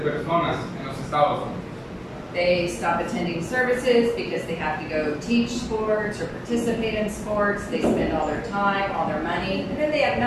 en los Estados Unidos. They stop attending services because they have to go teach sports or participate in sports. They spend all their time, all their money, and then they have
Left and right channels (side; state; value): both; identical; correlation 1.00